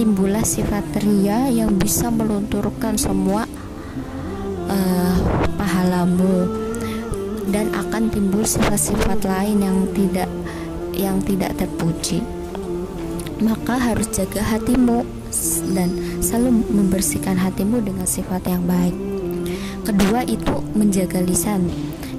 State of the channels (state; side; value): identical; both; correlation 1.00